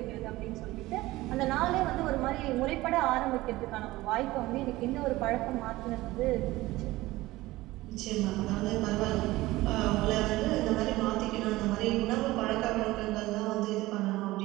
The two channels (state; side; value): quieter; left; 18.4 dB